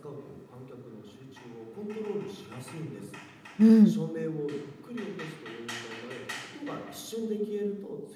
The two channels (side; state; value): both; identical; correlation 1.00